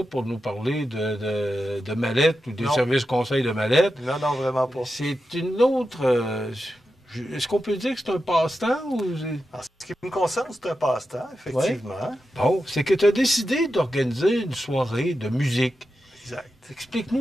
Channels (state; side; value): normal; both; correlation 0.90